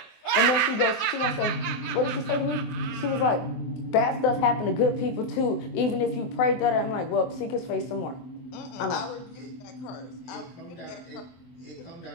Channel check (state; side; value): late; right; 23 ms